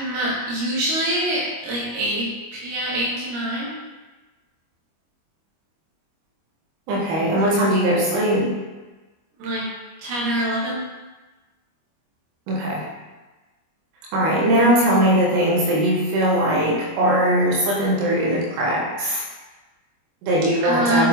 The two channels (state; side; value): late; left; 25 ms